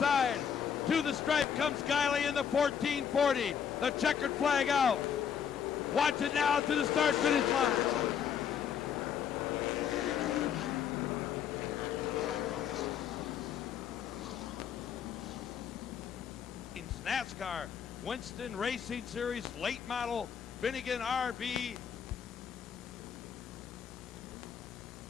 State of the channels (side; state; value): right; quieter; 8.0 dB